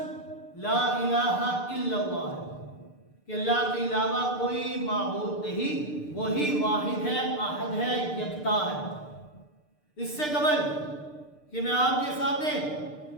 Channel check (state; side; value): late; right; 6.7 ms